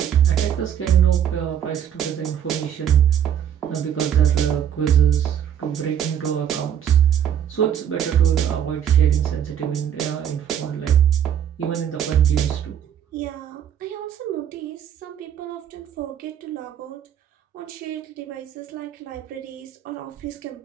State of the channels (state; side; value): quieter; left; 9.3 dB